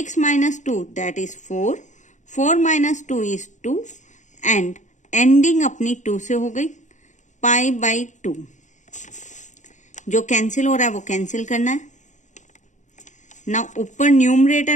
minus 2 that is 4. 4 minus 2 is 2 and ending अपनी 2 से हो गई, pi/2. जो कैंसिल हो रहा है वो कैंसिल करना है। ना ऊपर न्यूमरेटर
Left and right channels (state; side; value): late; right; 0.35 ms